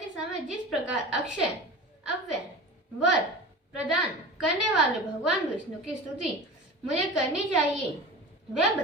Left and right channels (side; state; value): both; normal; correlation 0.34